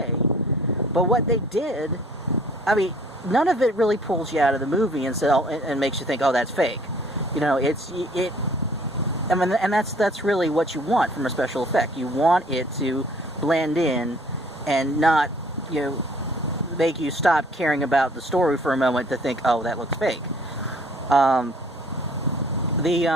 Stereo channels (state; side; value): normal; both; correlation 0.56